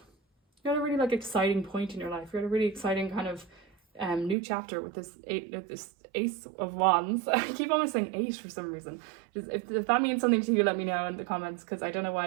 you're at a really, like, exciting point in your life. You're at a really exciting kind of new chapter with this Ace of Wands. I keep almost saying 8 for some reason. If that means something to you, let me know in the comments, because I don't know why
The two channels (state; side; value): drops out; left; at 4.4 s